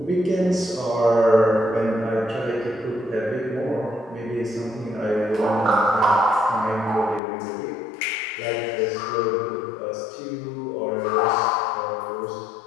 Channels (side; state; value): right; drops out; at 7.2 s